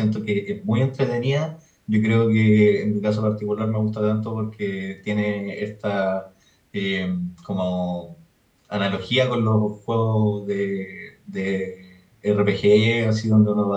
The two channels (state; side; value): identical; both; correlation 1.00